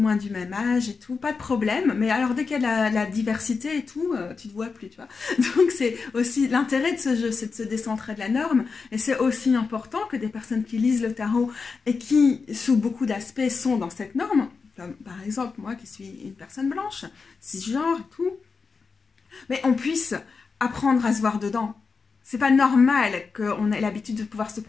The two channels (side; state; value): right; quieter; 4.8 dB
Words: du même âge et tout, pas de problème. Mais alors dès qu'il y a la diversité et tout, tu te vois plus, tu vois. Donc c'est aussi l'intérêt de ce jeu, c'est de se décentrer de la norme. Et c'est aussi important que des personnes qui lisent le tarot et qui, sous beaucoup d'aspects, sont dans cette norme, comme par exemple moi qui suis une personne blanche, cisgenre et tout, mais on puisse apprendre à se voir dedans. C'est pas normal qu'on ait l'habitude de pouvoir se